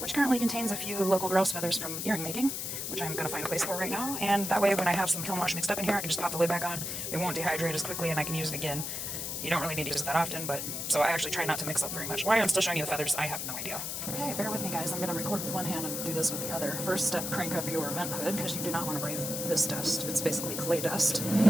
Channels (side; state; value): left; noise; hiss, 4 dB below the sound